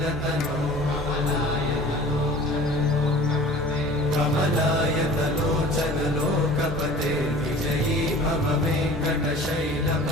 कमलायतलोचन लोकपते विजयी भव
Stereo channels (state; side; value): normal; both; correlation 0.44